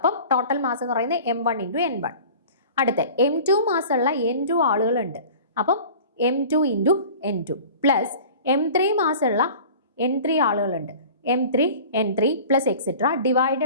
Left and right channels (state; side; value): inverted; both; correlation -0.42